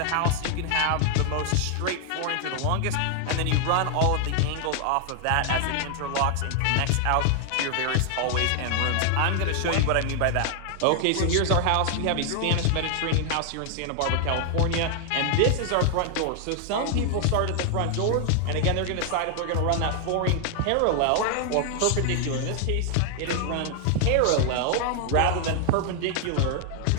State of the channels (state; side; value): different; both; correlation 0.00